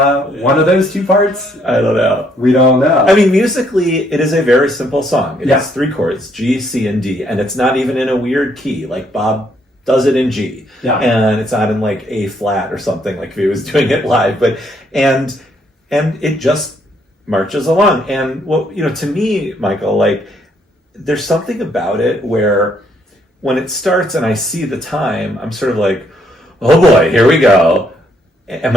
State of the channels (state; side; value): normal; both; correlation 0.70